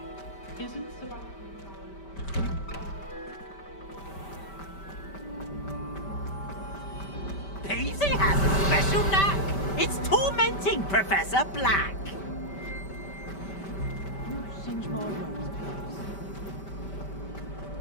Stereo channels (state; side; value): late; right; 5.1 ms